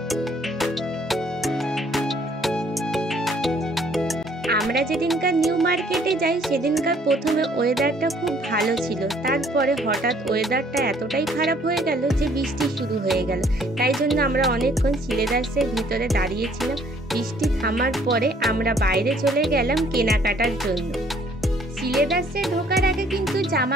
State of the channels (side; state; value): both; normal; correlation 0.61